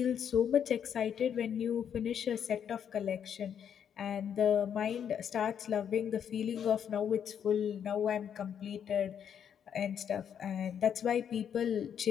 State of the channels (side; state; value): right; quieter; 8.4 dB